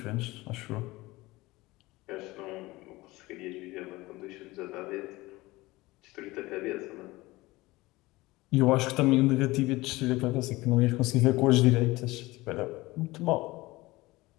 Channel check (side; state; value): right; quieter; 20.3 dB